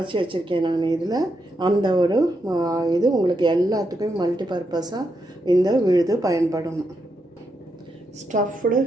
வச்சுருக்கேன் நான். இதில் அந்த ஒரு இது உங்களுக்கு எல்லாத்துக்கும் மல்டி பர்பஸாக இந்த விழுது பயன்படும். ஸ்டஃப்டு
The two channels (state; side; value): normal; both; correlation 0.82